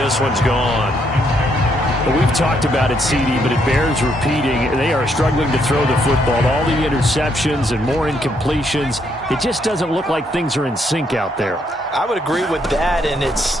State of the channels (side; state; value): both; normal; correlation 0.73